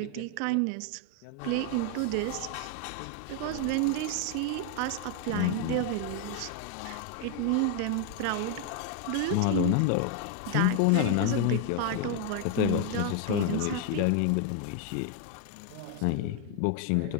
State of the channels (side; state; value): both; different; correlation 0.00